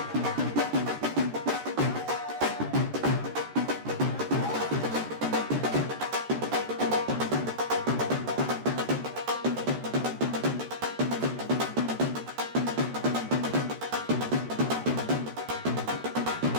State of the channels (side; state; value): left; late; 13 ms